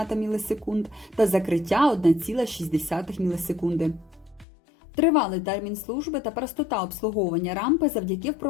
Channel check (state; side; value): drops out; right; at 4.5 s